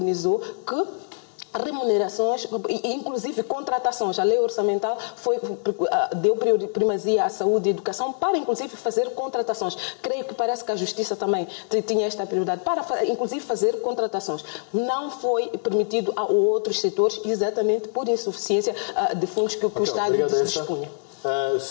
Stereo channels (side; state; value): right; silent; digital silence